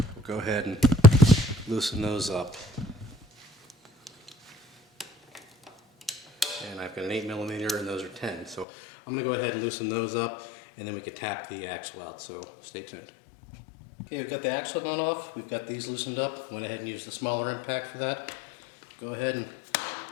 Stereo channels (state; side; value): drops out; right; at 8.7 s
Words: We'll go ahead and loosen those up. And I've got an 8mm and those are 10. So I'm going to go ahead and loosen those up, and then we can tap the axle out, so stay tuned. Okay, we've got the axle nut off, we've got these loosened up. Went ahead and used the smaller impact for that. Go ahead and